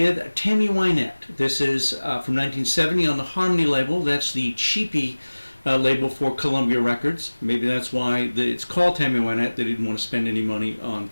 Tammy Wynette. This is from 1970 on the Harmony label. That's the cheapy label for Columbia Records. Maybe that's why it's called Tammy Wynette. They didn't want to spend any money on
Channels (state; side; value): inverted; both; correlation -1.00